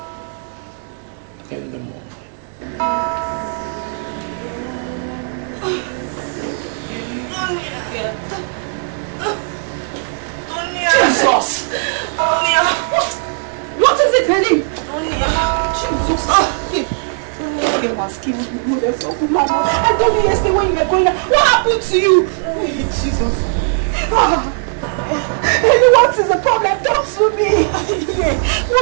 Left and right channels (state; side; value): silent; left; digital silence